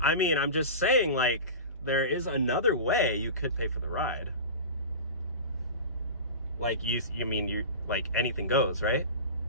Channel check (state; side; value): inverted; both; correlation -0.30